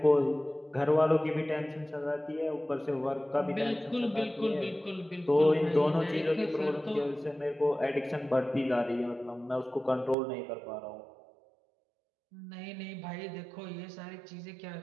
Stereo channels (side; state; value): left; drops out; at 10.2 s